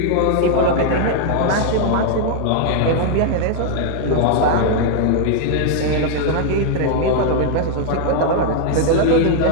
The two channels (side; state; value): both; different; correlation 0.00